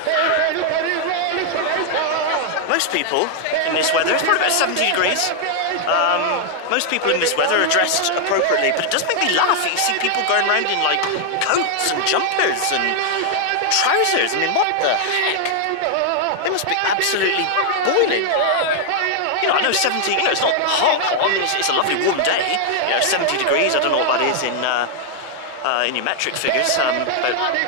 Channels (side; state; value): both; different; correlation 0.00